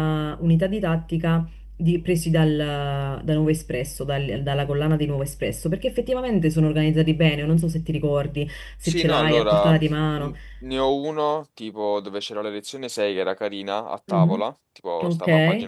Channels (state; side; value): identical; both; correlation 1.00